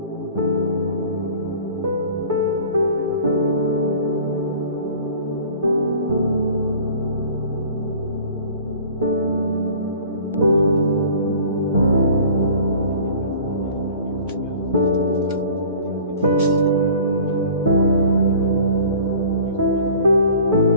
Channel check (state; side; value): inverted; both; correlation -0.47